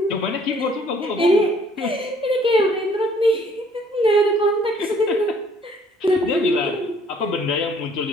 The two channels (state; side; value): normal; both; correlation 0.60